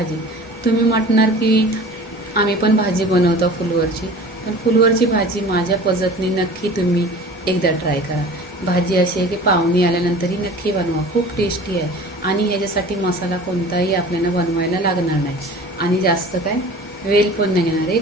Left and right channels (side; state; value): both; normal; correlation 0.41